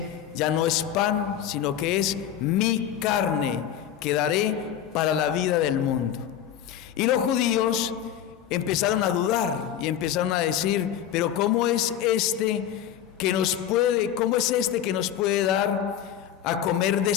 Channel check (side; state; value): right; quieter; 10.1 dB